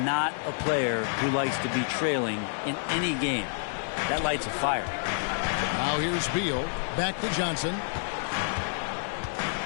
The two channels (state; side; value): silent; right; digital silence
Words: a player who likes to be trailing in any game. That lights a fire. Now here's Beal. Back to Johnson.